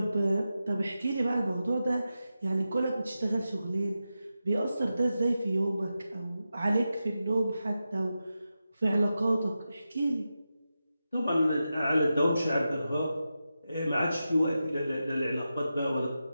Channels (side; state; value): both; inverted; correlation -0.91